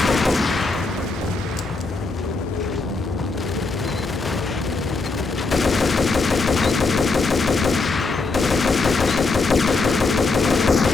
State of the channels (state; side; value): quieter; right; 3.8 dB